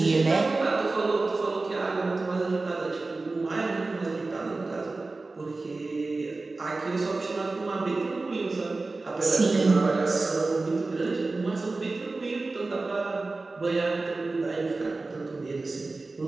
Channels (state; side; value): quieter; left; 3.5 dB